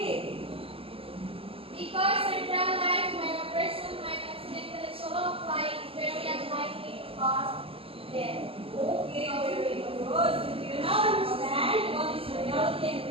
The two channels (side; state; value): left; late; 0.27 ms